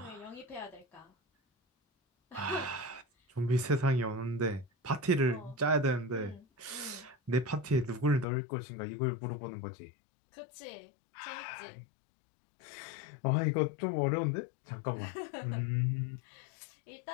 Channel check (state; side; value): drops out; right; at 8.2 s